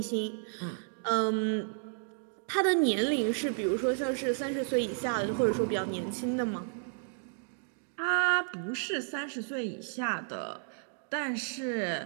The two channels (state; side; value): silent; left; digital silence